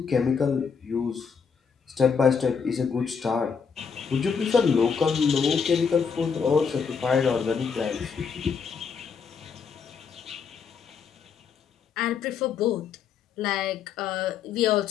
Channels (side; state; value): right; quieter; 6.1 dB